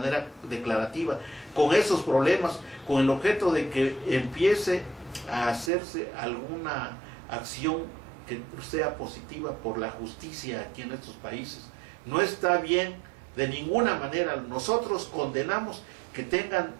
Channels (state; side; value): drops out; left; at 5.7 s